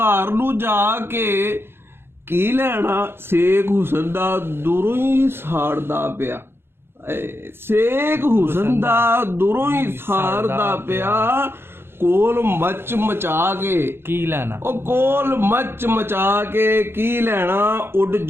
ਨੂੰ ਜਾ ਕੇ ਕੀ ਲੈਣਾ। ਸੇਖ ਹੁਸਨ ਦਾ ਦੂਰੋਂ ਹੀ ਸਾੜਦਾ ਪਿਆ। ਸੇਖ ਹੁਸਨ ਦਾ ਦੂਰੋਂ ਹੀ ਸਾੜਦਾ ਪਿਆ। ਕੋਲ ਮੱਚ ਮਚਾ ਕੇ ਕੀ ਲੈਣਾ। ਉਹ ਕੋਲ ਮੱਚ ਮਚਾ ਕੇ ਕੀ ਲੈਣਾ। ਉੱਡ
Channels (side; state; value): left; late; 0.11 ms